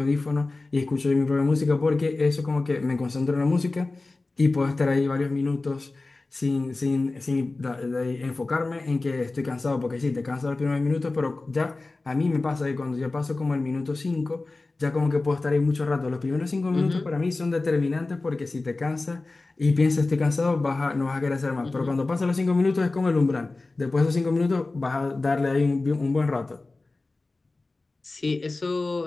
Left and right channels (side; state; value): right; quieter; 3.3 dB